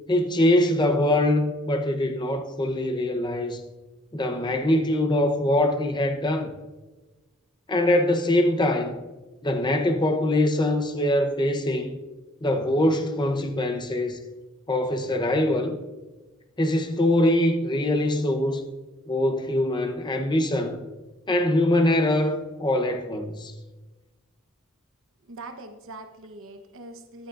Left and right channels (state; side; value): normal; both; correlation 0.62